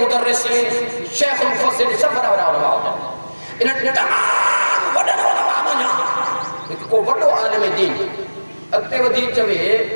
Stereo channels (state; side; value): inverted; both; correlation -1.00